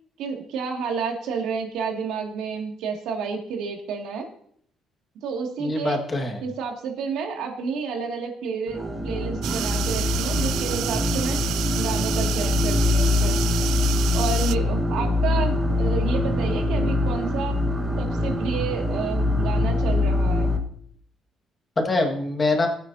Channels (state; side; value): normal; both; correlation 0.72